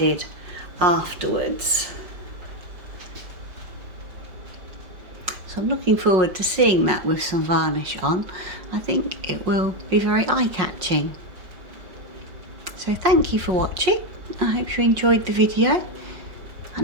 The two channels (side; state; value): left; late; 5.5 ms